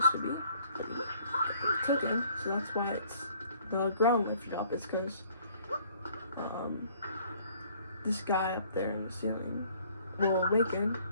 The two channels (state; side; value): inverted; both; correlation -0.59